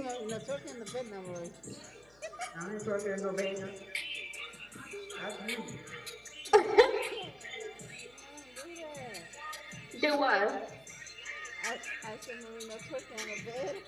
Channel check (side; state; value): left; noise; hum, 29 dB below the sound